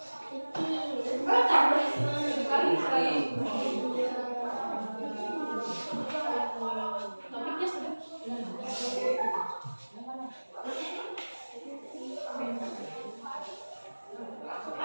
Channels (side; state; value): both; inverted; correlation -1.00